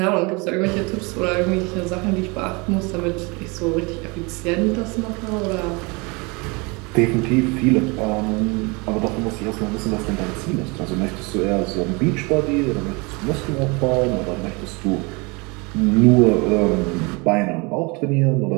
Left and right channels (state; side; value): quieter; left; 28.1 dB